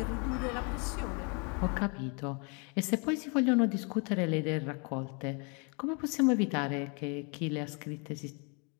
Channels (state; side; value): quieter; right; 34.4 dB